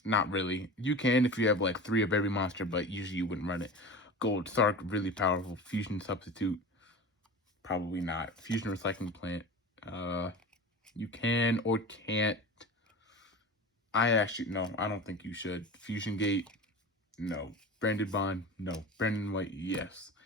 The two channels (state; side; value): normal; both; correlation 0.32